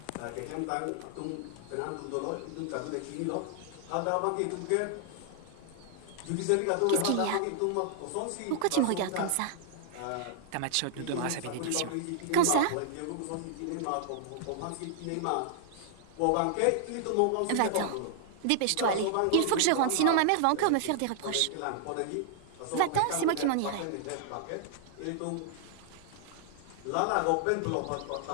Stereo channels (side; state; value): both; different; correlation 0.00